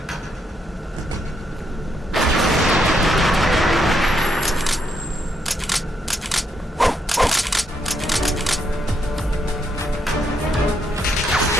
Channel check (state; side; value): normal; both; correlation 0.77